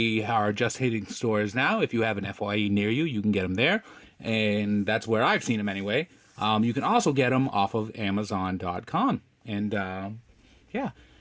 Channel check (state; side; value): identical; both; correlation 1.00